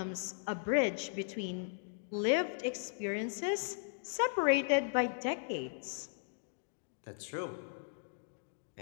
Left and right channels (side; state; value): right; silent; digital silence